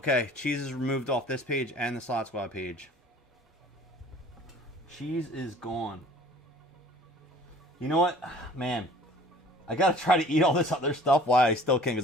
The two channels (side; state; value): both; normal; correlation 0.50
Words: cheese is removed off this page and the Slot Squad page. Cheese is gone. You know what? Man, I got to try to eat all this other stuff while I still can,